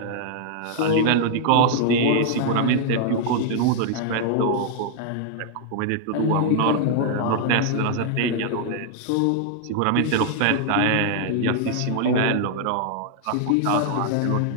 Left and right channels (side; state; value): both; different; correlation 0.00